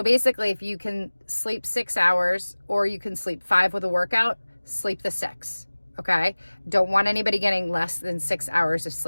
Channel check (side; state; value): both; inverted; correlation -1.00